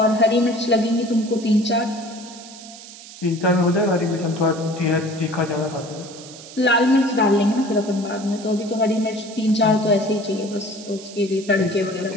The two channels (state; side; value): noise; right; hiss, 17 dB below the sound